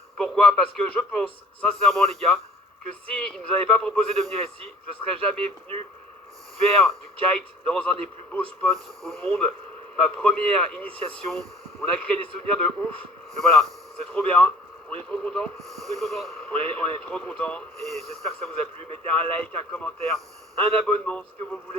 Pourquoi? Parce que je pense sincèrement les gars, que s'ils ne nous avaient pas proposé de venir ici, je ne serais jamais venu faire du kite dans un des plus beaux spots au monde. Ma première initiation, on a créé des souvenirs de ouf. Mais voilà, c'est trop bien. On est trop content. On est trop content et j'espère que ça vous a plu. Mettez un like, un commentaire, un abonnement, ce que vous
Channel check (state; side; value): normal; both; correlation 0.51